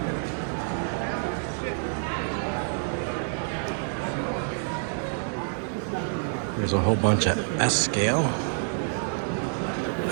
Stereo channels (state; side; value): silent; left; 60 dB below the other